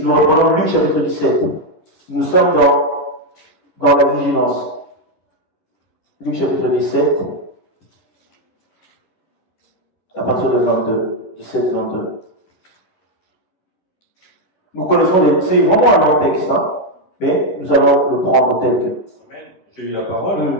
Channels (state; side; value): late; right; 11 ms